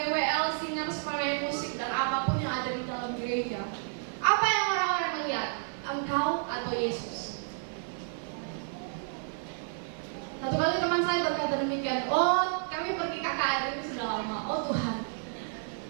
WL, singer, pemain musik, dan apapun yang ada di dalam gereja, apa yang orang-orang melihat? Engkau atau Yesus? Satu kali teman saya berkata demikian, oh kami pergi KKR ini sudah lama, oh Tuhan,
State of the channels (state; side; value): silent; left; digital silence